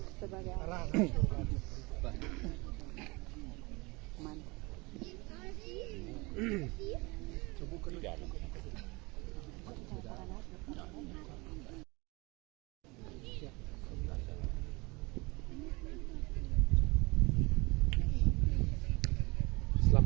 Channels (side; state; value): left; quieter; 25.5 dB